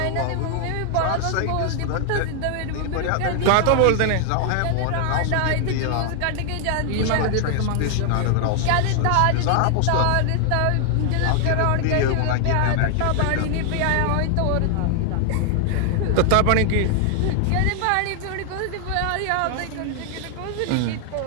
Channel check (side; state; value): both; different; correlation 0.00